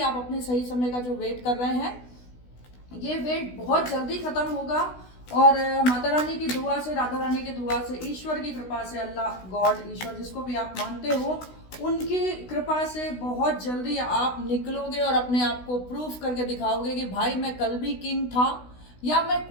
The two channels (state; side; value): late; right; 16 ms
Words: अपने सही समय का जो वेट कर रहे हैं, ये वेट बहुत जल्दी खत्म होगा। और माता रानी की दुआ से, राधा रानी की दुआ से, ईश्वर की कृपा से, अल्लाह गॉड ईश्वर जिसको भी आप मानते हो, उनकी कृपा से बहुत जल्दी आप निकलोगे और अपने आप को प्रूफ करके दिखाओगे कि भाई मैं कल भी किंग था या मैं